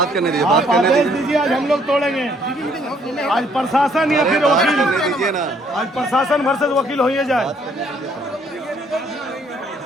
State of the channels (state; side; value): normal; both; correlation 0.65